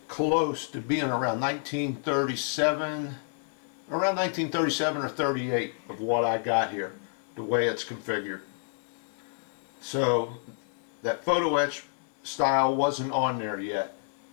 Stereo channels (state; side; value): silent; right; digital silence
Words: close to being around 1937, or 38 of what I got here, the way it's configured. So that photo etch style wasn't on there yet.